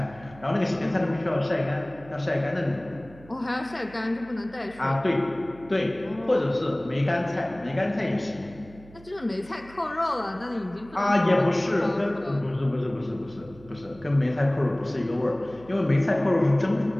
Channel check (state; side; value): noise; right; hum, 21 dB below the sound